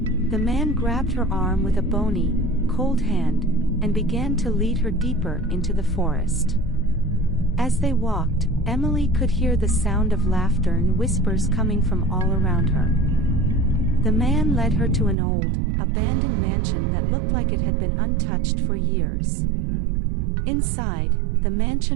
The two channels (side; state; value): left; drops out; at 15.2 s